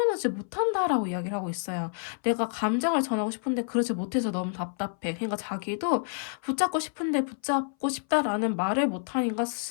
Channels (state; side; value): silent; right; 58 dB below the other